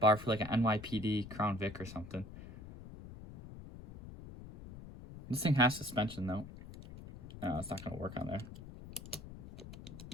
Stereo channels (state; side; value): noise; left; rumble, 14 dB below the sound